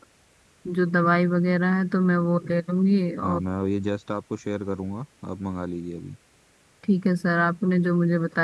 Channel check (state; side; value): identical; both; correlation 1.00